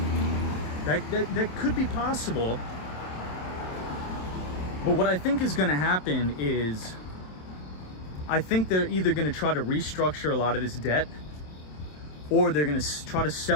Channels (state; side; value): late; right; 27 ms